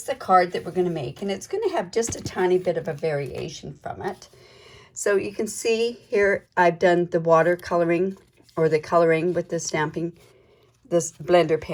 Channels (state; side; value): identical; both; correlation 1.00